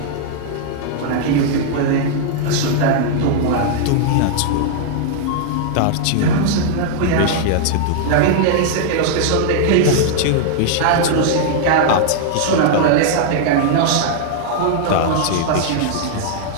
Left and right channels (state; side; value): different; both; correlation -0.01